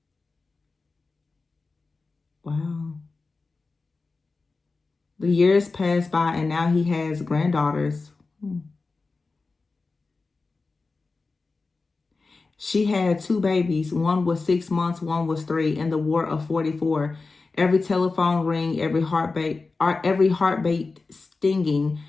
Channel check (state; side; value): quieter; right; 3.9 dB